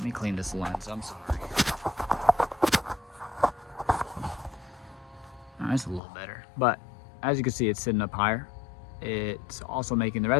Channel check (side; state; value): right; drops out; at 6.0 s